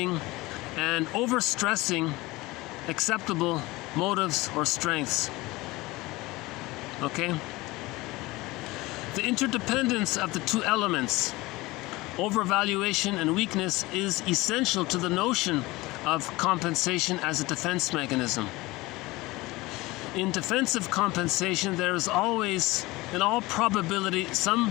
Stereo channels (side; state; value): right; quieter; 20.9 dB